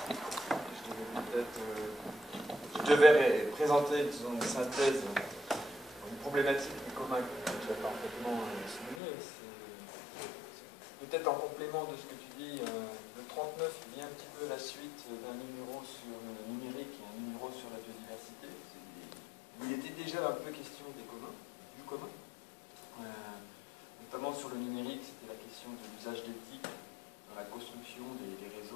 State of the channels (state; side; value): drops out; right; at 9.0 s